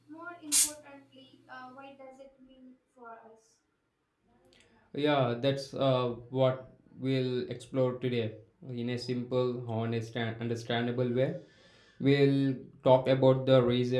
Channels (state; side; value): identical; both; correlation 1.00